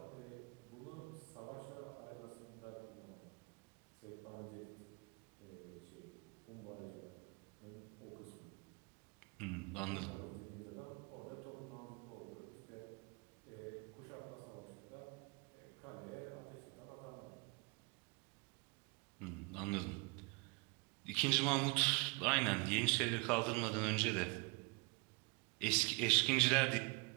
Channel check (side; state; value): left; quieter; 28.5 dB